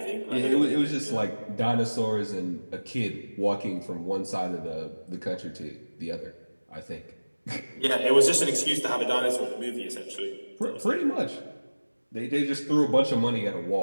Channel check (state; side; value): inverted; both; correlation -1.00